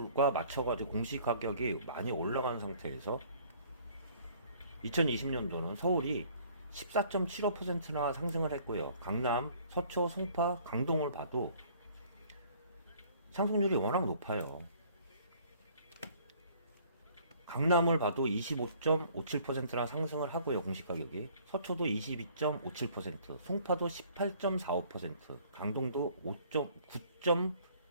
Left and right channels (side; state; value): both; inverted; correlation -0.57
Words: 맞춰가지고 공시 가격이 많이 올라간 상태에서 2020년도는 서울이 14.75%나 상승을 했고요. 강남, 서초, 송파, 강동을 봐도 상승률이 워낙 높아요. 강남을 봐도 25.57%나 상승을 하고요. 공시가격이. 서초도 22.57%, 송파도 18.45%, 강동도